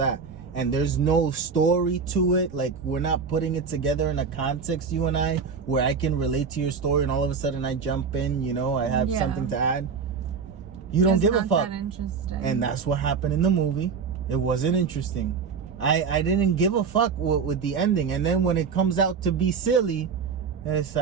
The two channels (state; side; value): quieter; left; 5.7 dB